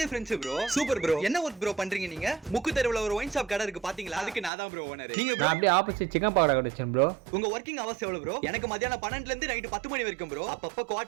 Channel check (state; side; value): drops out; left; at 4.5 s